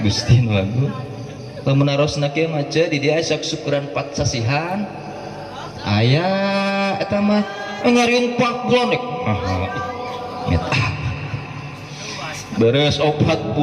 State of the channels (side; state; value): both; identical; correlation 1.00